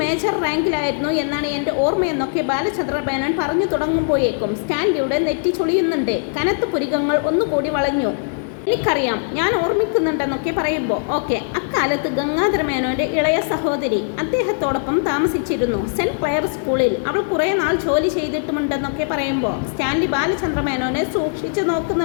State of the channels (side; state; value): right; silent; 66 dB below the other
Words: മേജർ റാങ്കിലായിരുന്നു എന്നാണ് എൻ്റെ ഓർമ്മയെന്നൊക്കെ ബാലചന്ദ്ര മേനോൻ പറഞ്ഞു തുടങ്ങുമ്പോഴേക്കും സ്റ്റാൻലിയുടെ നെറ്റി ചൊളിയുന്നുണ്ട്. കനത്ത പുരികങ്ങൾ ഒന്നുകൂടി വളഞ്ഞു. എനിക്കറിയാം, ഞാൻ ഓർമ്മിക്കുന്നുണ്ടെന്നൊക്കെ പറയുമ്പോൾ ഓക്കെ. അക്കാലത്ത് ഗംഗാധര മേനോൻ്റെ ഇളയ സഹോദരി അദ്ദേഹത്തോടൊപ്പം താമസിച്ചിരുന്നു. സെൻറ്റ് ക്ലെയർ സ്കൂളിൽ. അവൾ കുറേ നാൾ ജോലി ചെയ്തിട്ടുമുണ്ടെന്നൊക്കെ പറയുമ്പോൾ സ്റ്റാൻലി ബാലചന്ദ്ര മേനോനെ സൂക്ഷിച്ചു